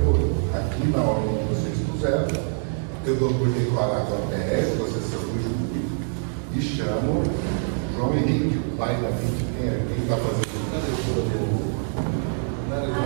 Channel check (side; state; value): left; silent; digital silence